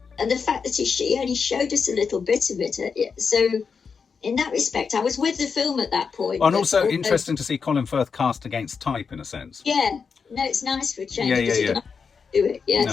And the fact that she only showed us a little bit of it. So in that respect, I was with the film at that point. And also interesting to see Colin Firth cast against type, in a sense. Yeah. No, it's nice for a change. Yeah. Do it.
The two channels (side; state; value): right; quieter; 5.7 dB